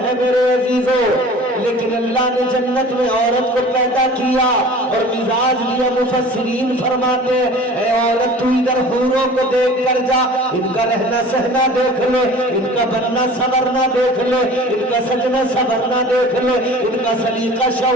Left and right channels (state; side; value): normal; both; correlation 0.43